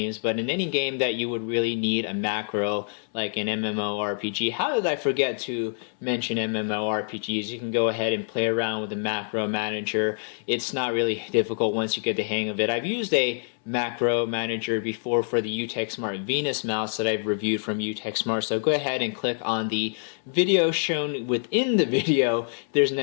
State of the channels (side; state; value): right; silent; 61 dB below the other